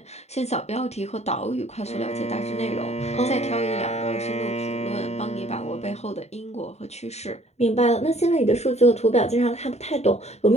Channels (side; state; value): right; late; 0.32 ms